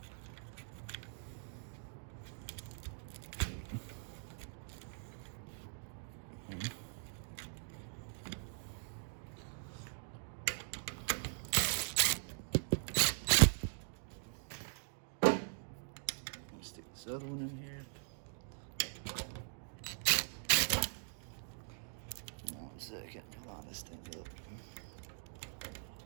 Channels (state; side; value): silent; left; digital silence